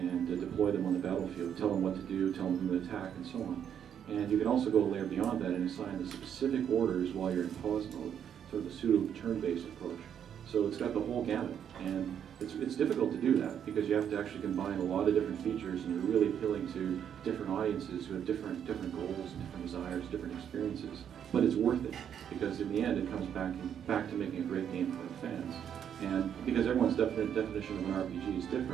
deploy them on the battlefield, tell them what to do, tell them who to attack, and so on. And you can also go a layer beyond that and assign the specific orders while you're in pause mode, sort of a pseudo turn-based approach. So it's got the whole gamut, and it's difficult to do that because you have to actually combine a lot of different features, and you're really appealing to different audiences who have different goals and different desires, different experiences. But it's worth it, because in the end it comes back to making a great game for the fans. And because everyone's definition of an RPG is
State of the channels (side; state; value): left; quieter; 8.8 dB